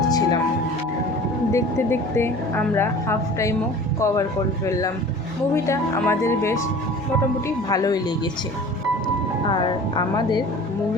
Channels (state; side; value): normal; both; correlation 0.43